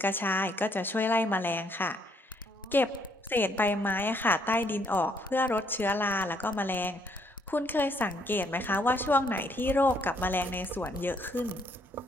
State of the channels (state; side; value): normal; both; correlation 0.69